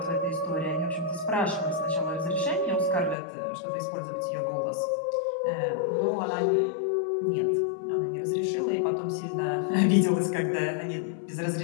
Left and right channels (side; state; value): right; drops out; at 3.2 s